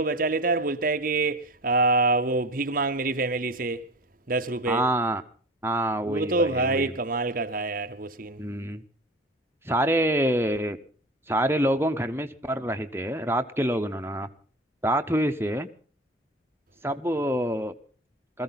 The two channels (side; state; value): both; normal; correlation 0.33